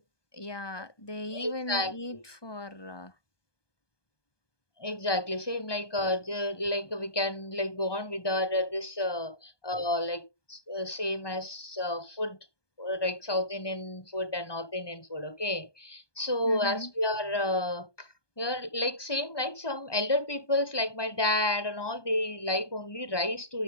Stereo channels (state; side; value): late; right; 1.2 ms